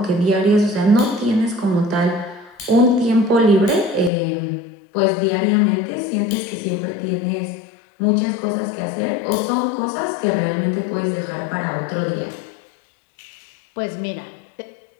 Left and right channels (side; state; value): right; drops out; at 4.1 s